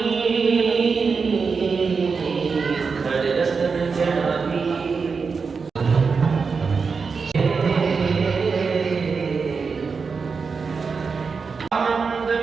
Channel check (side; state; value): left; quieter; 5.1 dB